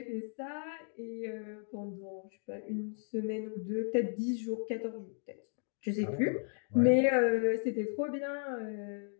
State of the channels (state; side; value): silent; right; 54 dB below the other